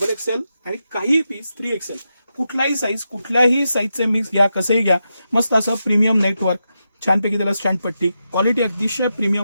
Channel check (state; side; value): inverted; both; correlation -0.87